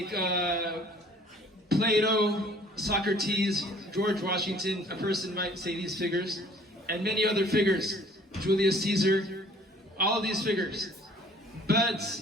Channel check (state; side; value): normal; both; correlation 0.54